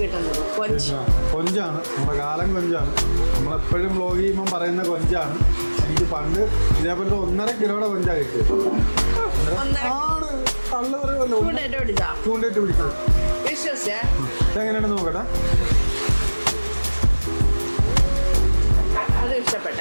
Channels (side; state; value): both; inverted; correlation -1.00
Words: കിട്ടുന്നത്. കൊഞ്ചാണ് നമ്മുടെ കാലം കൊഞ്ചാണ്. നമ്മളെപ്പോഴും വ്ലോഗ് ചെയ്യുമ്പം പറയുന്ന കൊഞ്ചാണ്. എനിക്ക് പണ്ട് ഇതേപോലത്തെ 1.5 കിലോയുടെ കൊഞ്ചാണ് കിട്ടിയത്. ആണ് തള്ളു പറയുമല്ലോ. ചൂണ്ടിട്ട് പിടിച്ചത്. ഇതെങ്ങനെയാണെന്ന് നോക്കട്ടെ. അത്